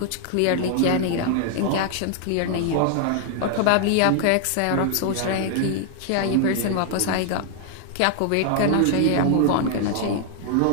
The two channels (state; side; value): different; both; correlation 0.00